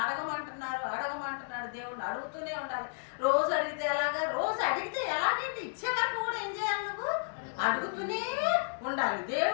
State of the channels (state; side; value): silent; right; digital silence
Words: అడగమంటున్నాడు దేవుడు, అడుగుతూనే ఉండాలి. రోజు అడిగితే ఎలాగైతే ఇచ్చే వరకు కూడా ఏం చేయాలి, నువ్వు అడుగుతూనే ఉండాలి.